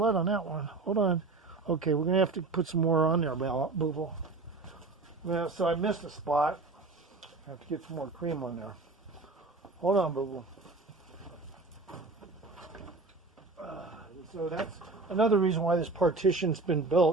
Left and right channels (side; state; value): left; quieter; 3.6 dB